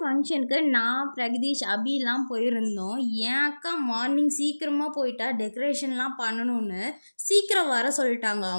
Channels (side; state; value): both; inverted; correlation -1.00